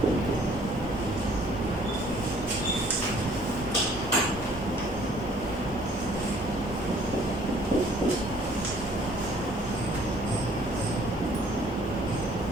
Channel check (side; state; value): both; normal; correlation 0.58